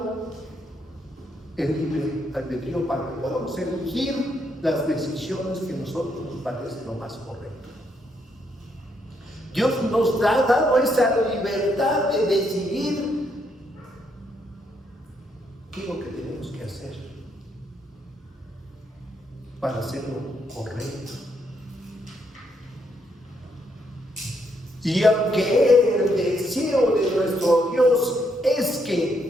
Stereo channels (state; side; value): normal; both; correlation 0.75